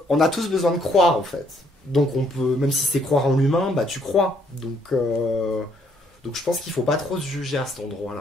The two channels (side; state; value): both; normal; correlation 0.68